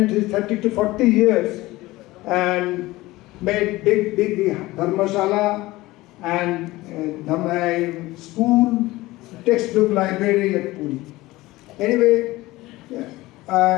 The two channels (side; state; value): right; quieter; 19.0 dB